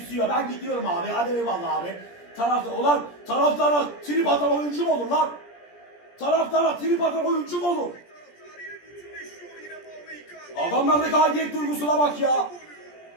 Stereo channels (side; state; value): right; late; 17 ms